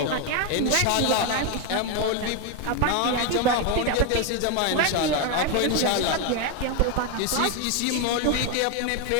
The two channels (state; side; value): different; both; correlation 0.02